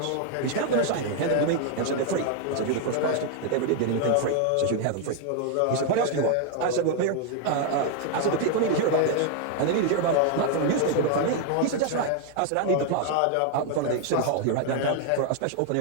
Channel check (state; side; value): different; both; correlation 0.00